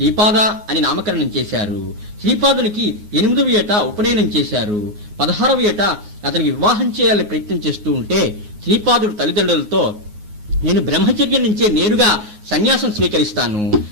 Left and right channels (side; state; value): left; late; 9.5 ms